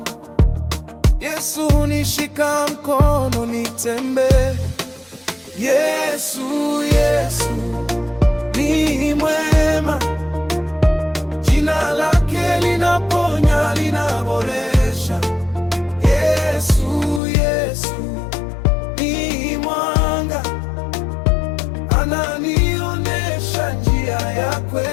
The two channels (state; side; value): drops out; right; at 17.2 s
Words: Yesu hunishika mkono nitembee. Yesu, Yesu ni mwema, jina lake linaponya, linaboresha. Yesu, Yesu ni mwanga, ananionyesha njia ya